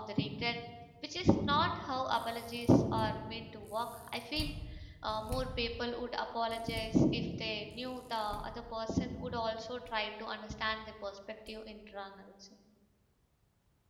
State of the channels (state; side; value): identical; both; correlation 1.00